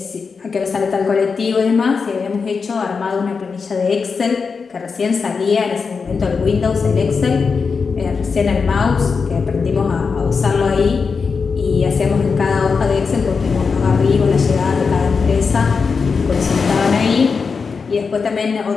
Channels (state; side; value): quieter; right; 5.2 dB